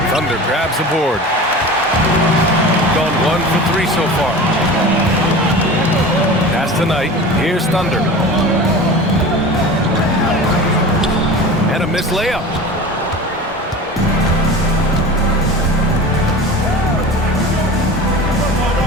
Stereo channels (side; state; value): both; normal; correlation 0.34